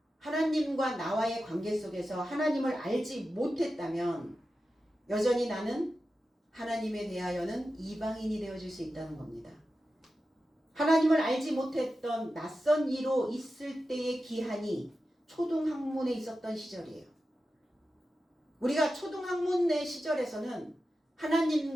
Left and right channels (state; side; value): normal; both; correlation 0.92